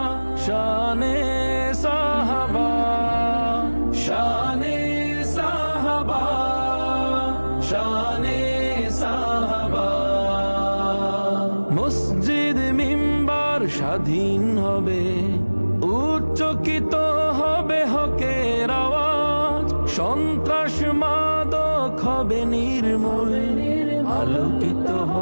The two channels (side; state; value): both; inverted; correlation -1.00